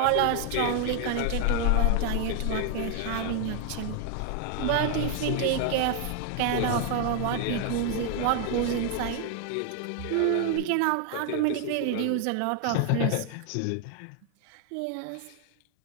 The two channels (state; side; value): different; both; correlation 0.00